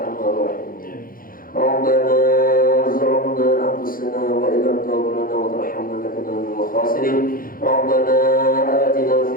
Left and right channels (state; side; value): late; right; 0.41 ms